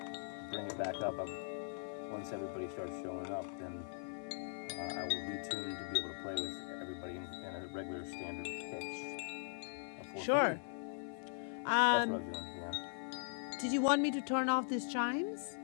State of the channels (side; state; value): right; silent; 51 dB below the other